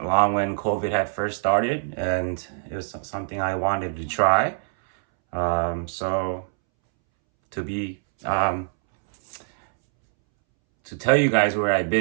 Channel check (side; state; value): left; silent; 63 dB below the other